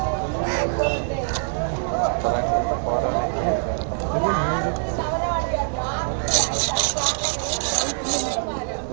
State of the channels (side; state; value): left; silent; digital silence